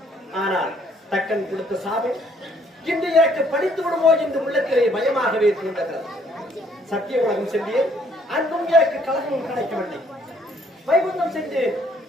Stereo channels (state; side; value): normal; both; correlation 0.64